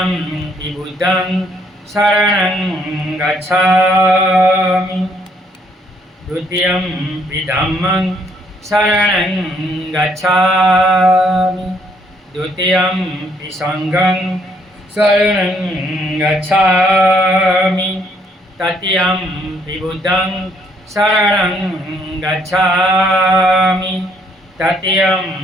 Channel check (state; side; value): normal; both; correlation 0.68